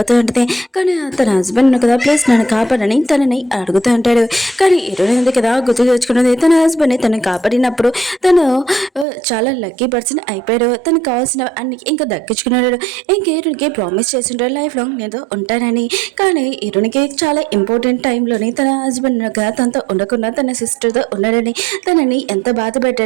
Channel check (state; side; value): drops out; left; at 9.1 s